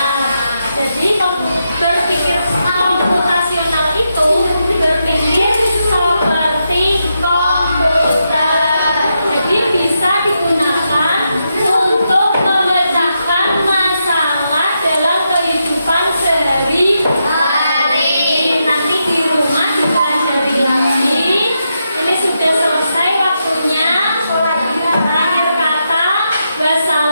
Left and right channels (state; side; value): inverted; both; correlation -0.84